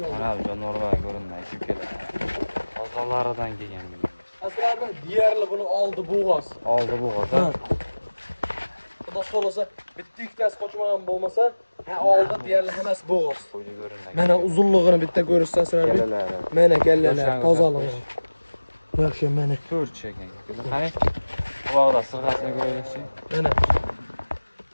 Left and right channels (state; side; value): inverted; both; correlation -1.00